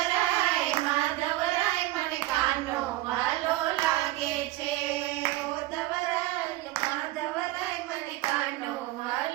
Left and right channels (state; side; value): quieter; left; 17.1 dB